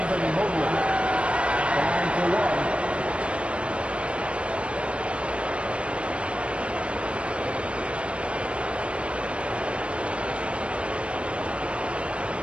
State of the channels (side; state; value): left; late; 0.059 ms